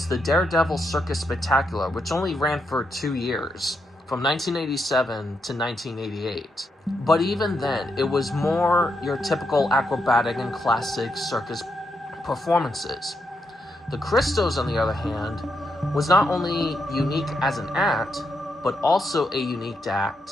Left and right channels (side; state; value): both; normal; correlation 0.81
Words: the Daredevil Circus Spectacular, which only ran for 2 years, from 1987 to 1988. But even then, it was more your typical acrobatic and classic circus performances. The Kristos, on the other hand, was not only unique as an act, but also a unique